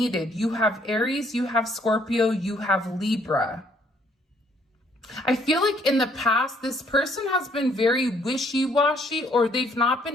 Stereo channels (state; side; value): normal; both; correlation 0.65